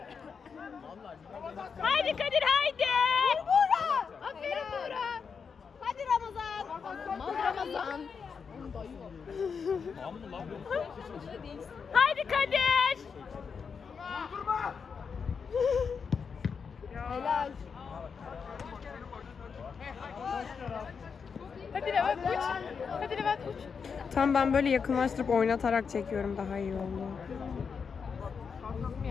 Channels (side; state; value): right; quieter; 6.0 dB